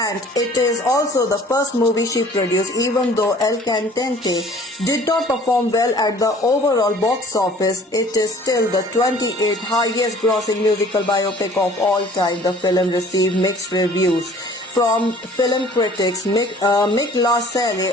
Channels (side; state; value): both; normal; correlation 0.52